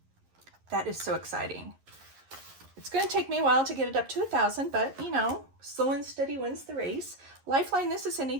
That is so exciting. It's going to take me a while to get it up to 1,000, but you know, slow and steady wins the race. Lifeline, this is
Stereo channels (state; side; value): late; left; 11 ms